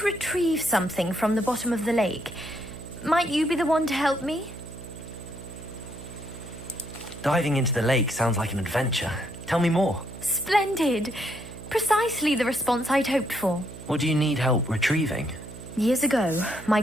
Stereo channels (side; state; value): right; noise; hum, 14 dB below the sound